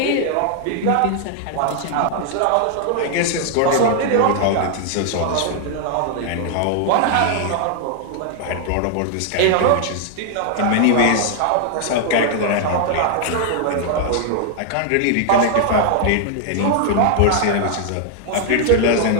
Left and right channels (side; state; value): both; different; correlation 0.00